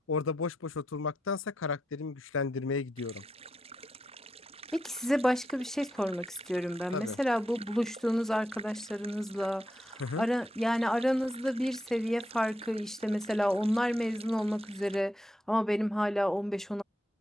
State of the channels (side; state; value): both; normal; correlation 0.83